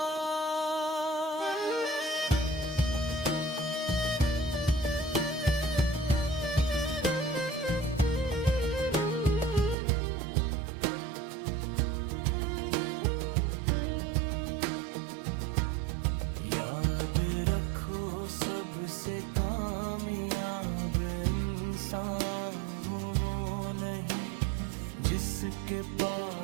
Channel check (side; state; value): left; drops out; at 9.8 s